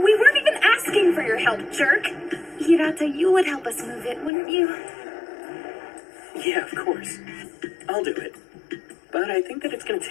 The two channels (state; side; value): drops out; right; at 4.3 s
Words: weren't even asking for your help, jerk. Hirata, you would help us move it, wouldn't you? Yeah, of course. I'll do it. But I think that it's gonna